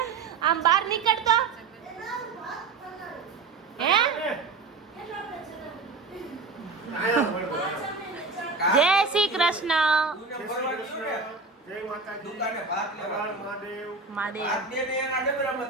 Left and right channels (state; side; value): quieter; left; 4.3 dB